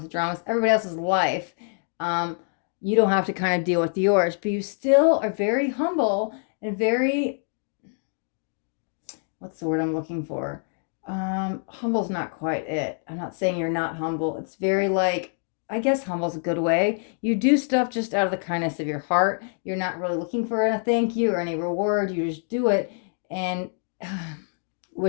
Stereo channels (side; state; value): right; silent; 61 dB below the other